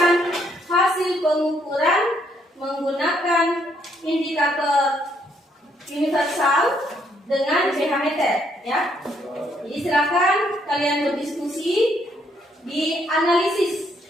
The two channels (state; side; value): normal; both; correlation 0.71